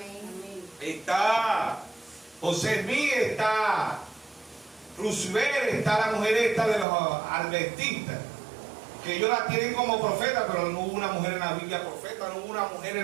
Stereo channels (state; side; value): drops out; left; at 6.9 s